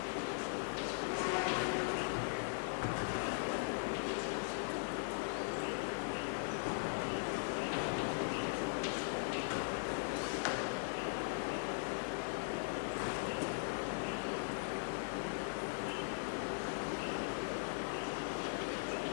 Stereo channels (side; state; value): right; silent; 51 dB below the other